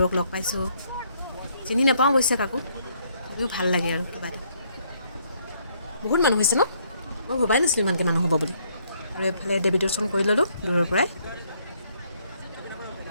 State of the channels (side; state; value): both; inverted; correlation -0.69